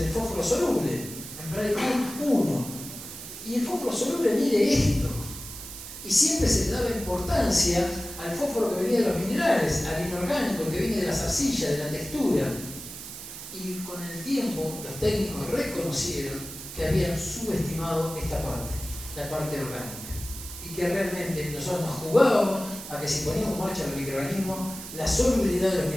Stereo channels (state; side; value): noise; right; hiss, 11 dB below the sound